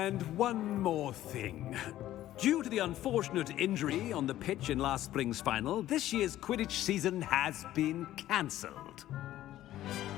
one more thing. Due to the unfortunate injury on the pitch in last spring's final, this year's Quidditch season has been cancelled.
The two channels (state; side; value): quieter; right; 13.7 dB